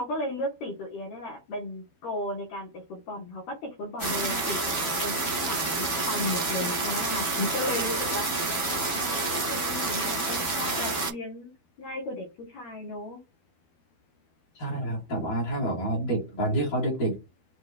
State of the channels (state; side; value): late; right; 12 ms